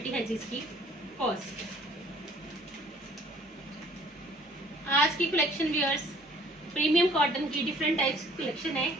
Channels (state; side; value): normal; both; correlation 0.56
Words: है जिसकी कॉस्ट। आज की कलेक्शन व्यूअर्स प्रीमियम कॉटन की डिफरेंट टाइप्स की कलेक्शन है।